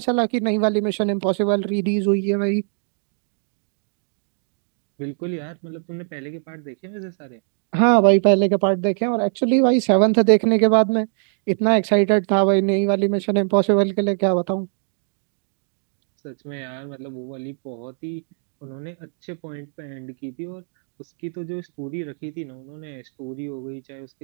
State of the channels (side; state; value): left; silent; digital silence